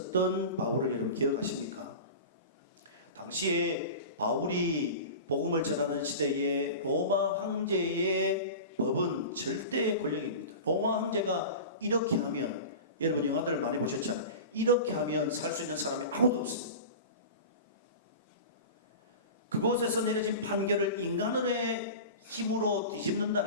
바울을 여러분 기억하십니까? 당시에 바울이 복음을 전하는 시대에 로마 황제의 법은 절대 권력입니다. 로마 황제가 이렇게 하면, 여러분 영화들을 많이 보셨잖아요. 이렇게 하면 살 수 있는 사람이 아무도 없습니다. 그곳에서 내려진 판결을 인간의 힘으로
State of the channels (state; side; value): inverted; both; correlation -0.32